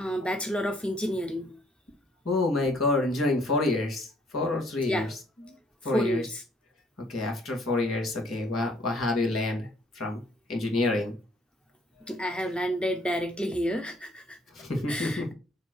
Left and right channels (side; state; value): both; normal; correlation 0.63